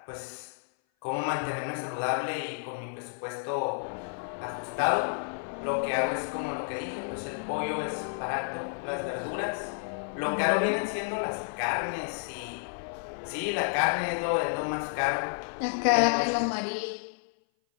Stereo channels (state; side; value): silent; right; 56 dB below the other